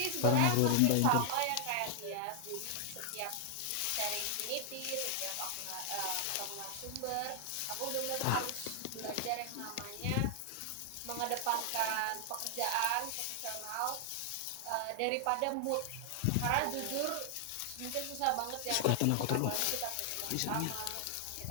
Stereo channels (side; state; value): both; different; correlation 0.00